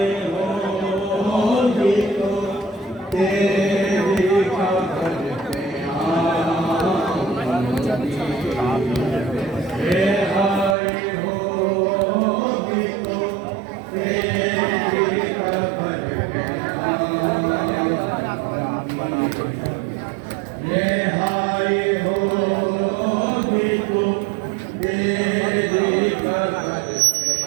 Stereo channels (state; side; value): drops out; left; at 10.8 s